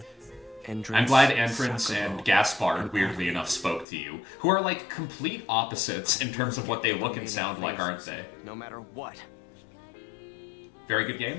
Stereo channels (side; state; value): right; drops out; at 3.9 s